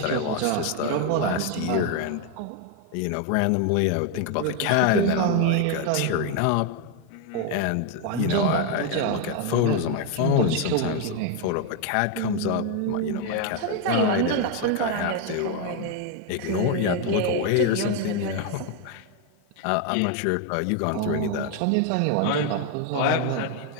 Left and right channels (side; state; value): both; different; correlation 0.01